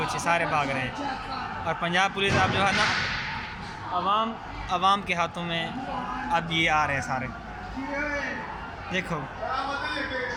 सारे भाग रहे हैं। और पंजाब पुलिस अब जो है ना अवाम के हाथों में अब ये आ रहे हैं सारे। देखो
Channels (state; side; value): identical; both; correlation 1.00